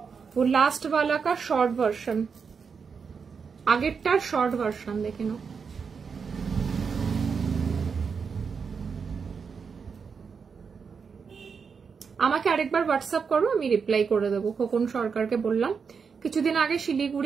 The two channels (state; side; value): quieter; left; 5.8 dB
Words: वो लास्ट वाला का शॉर्ट वर्जन, আগেরটার শর্ট ভার্সন দেখে নাও। আমাকে আরেকবার হোয়াটসঅ্যাপ করো, আমি রিপ্লাই করে দেবো। খোকন সরকারকে বললাম, কিছুদিন আগে